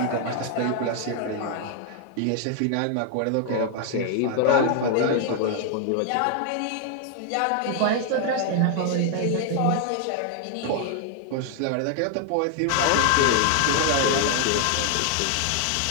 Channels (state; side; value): different; both; correlation 0.00